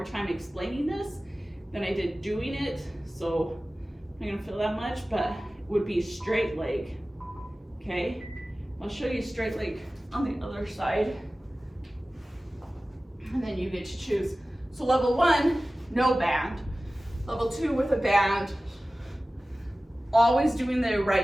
time explaining this than I did doing it, so I'm not gonna feel that much, but would be straight leg, okay? I'll show you straight leg on the other side, and then you get to choose. So level 1, no band. Level 2 with a band, always doing the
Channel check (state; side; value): normal; both; correlation 0.97